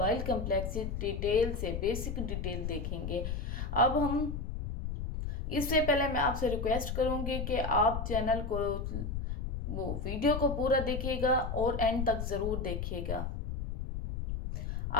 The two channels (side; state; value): left; noise; rumble, 4 dB below the sound